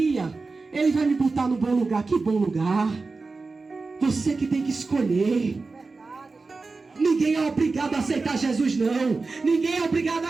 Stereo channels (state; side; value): quieter; left; 3.9 dB